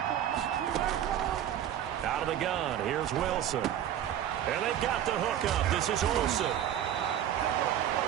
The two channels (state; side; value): quieter; left; 10.7 dB